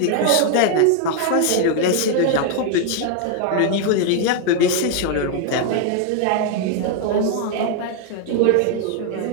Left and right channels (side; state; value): both; different; correlation 0.00